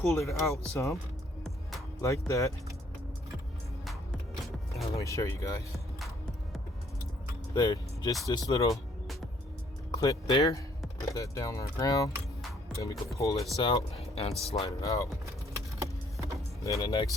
it out some like that. Now, let me show you guys. There, just this little clip there. Put that down on the ground. Then we can pull this out and slide it out. Then the next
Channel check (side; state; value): both; normal; correlation 0.64